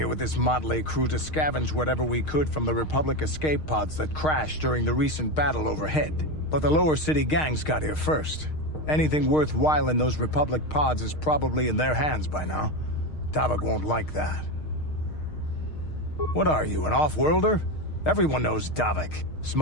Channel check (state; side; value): late; right; 6.5 ms